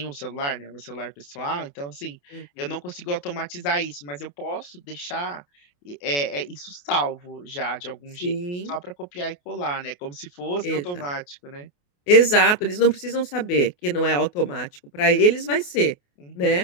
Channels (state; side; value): late; right; 28 ms